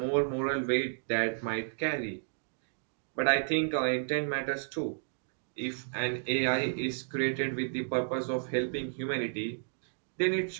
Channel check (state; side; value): silent; left; digital silence